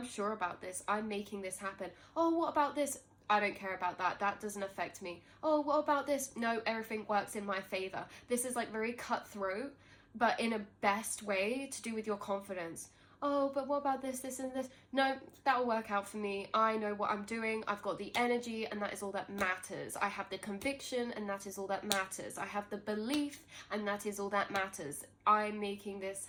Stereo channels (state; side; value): identical; both; correlation 1.00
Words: sure about this. I'm making this happen. Oh, what about this? I don't care about that. That doesn't affect me. Oh, what about this? No, everything works in my favor. This is like very cutthroat, but in a best way to do with your confidence. Oh, but what about this, this, and this? No, that'll work out for me. I know what I'm doing. I've got the energy, and that is all that matters. I have the conviction, and that is all that matters. I have the belief, and that is all that matters. I'm making this